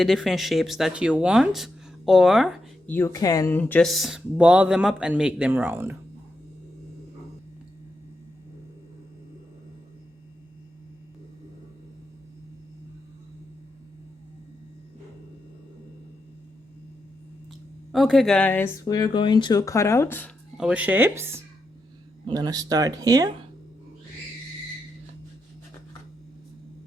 different shapes that you want, or you can just ball them up and make them round. Okay guys, we're going to cut out our shapes. I'm going to start here.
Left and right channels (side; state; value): both; normal; correlation 0.85